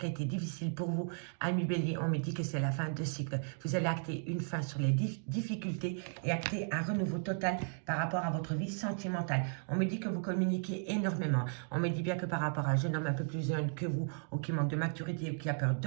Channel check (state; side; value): silent; left; 54 dB below the other